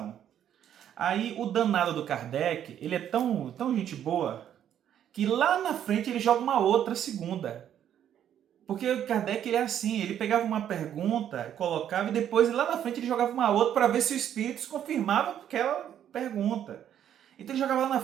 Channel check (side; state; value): left; quieter; 10.1 dB